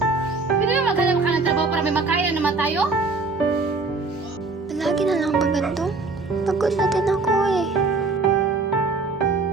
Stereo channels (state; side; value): quieter; left; 3.8 dB